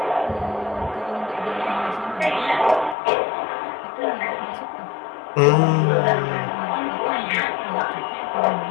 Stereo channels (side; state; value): right; drops out; at 3.0 s